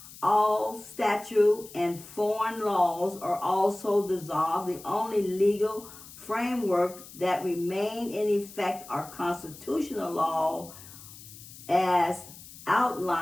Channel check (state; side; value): noise; left; hiss, 17 dB below the sound